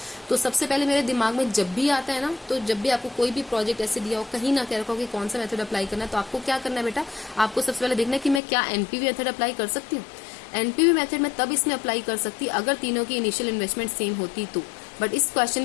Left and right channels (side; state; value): right; drops out; at 8.4 s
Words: तो सबसे पहले मेरे दिमाग में जब भी आता है ना, तो जब भी आपको कोई भी प्रोजेक्ट ऐसे दिया हो, कहीं ना कह रखा हो कि कौन सा मेथड अप्लाई करना है, तो आपको क्या करना है बेटा, आपको सबसे पहले देखना है कि मैं क्या NPV मेथड अप्लाई कर सकती हूँ। NPV मेथड में तब इसमें अप्लाई कर सकती अगर तीनों की इनिशियल इन्वेस्टमेंट सेम होती तो, बट इस क्वेश्चन